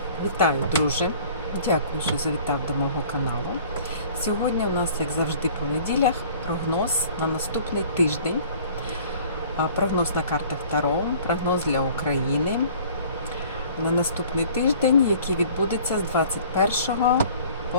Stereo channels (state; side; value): inverted; both; correlation -0.50